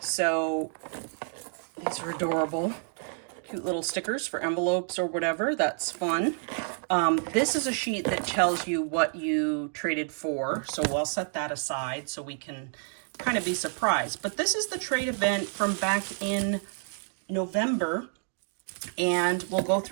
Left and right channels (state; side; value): silent; left; 59 dB below the other